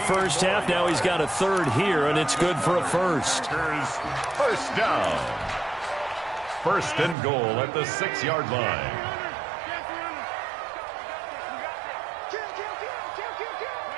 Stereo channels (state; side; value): drops out; left; at 7.2 s